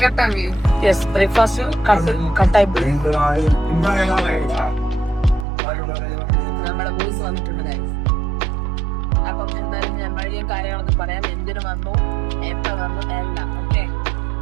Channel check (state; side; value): drops out; left; at 5.5 s